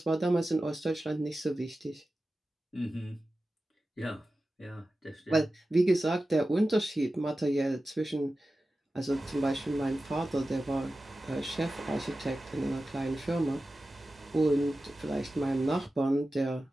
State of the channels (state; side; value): normal; both; correlation 0.94